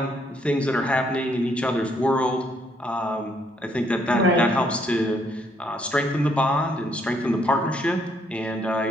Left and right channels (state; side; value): normal; both; correlation 0.70